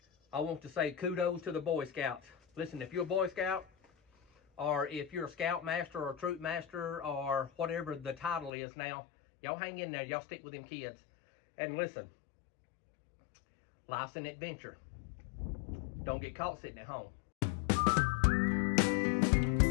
I want to say kudos to the Boy Scouts. Listen, if you're a Boy Scout, or if you're a Scout Master or a Troop Master or whatever the title is now, y'all hang in there. Y'all stick with them kids. And listen, life's an adventure. Don't get caught sitting at home.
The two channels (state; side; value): drops out; right; at 8.5 s